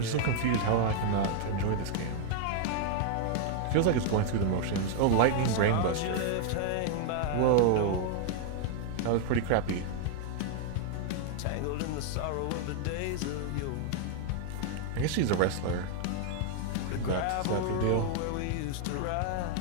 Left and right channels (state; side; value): different; both; correlation 0.00